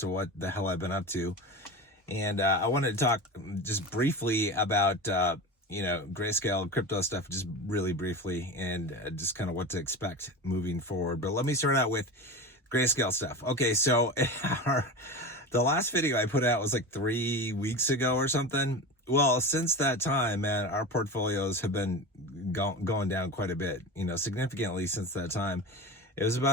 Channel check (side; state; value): both; normal; correlation 0.28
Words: what the hell I've been up to. And I wanted to talk just briefly about, Grayscale crypto stuff, just really briefly, and just kind of what to expect moving forward. But let me start out with Grayscale stuff. Okay, so the last video I put out was like 3 weeks ago or something. Well, since that time, man, our portfolios have been going down quite a bit, significantly since that time. It was